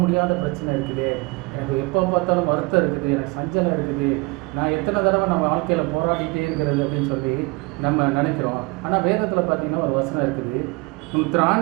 முடியாத பிரச்சனை இருக்குது, எனக்கு எப்போ பார்த்தாலும் வருத்தம் இருக்குது, எனக்கு சஞ்சலம் இருக்குது, நான் எத்தனை தடவை நம்ம வாழ்க்கையில் போராடிட்டே இருக்கிறது அப்படின்னு சொல்லி நம்ம நினைக்கிறோம். ஆனால் வேதத்தில் பார்த்தீங்கன்னா ஒரு வசனம் இருக்குது, உன்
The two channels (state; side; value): quieter; left; 26.5 dB